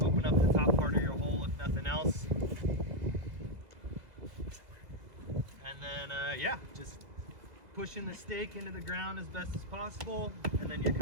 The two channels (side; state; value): left; late; 2.0 ms